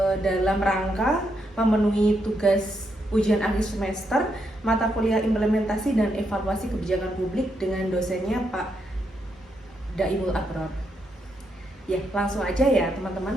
dalam rangka memenuhi tugas ujian akhir semester mata kuliah implementasi dan evaluasi kebijakan publik dengan dosennya Pak Daimul Abror. Ya, langsung aja ya teman-teman.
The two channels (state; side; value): normal; both; correlation 0.80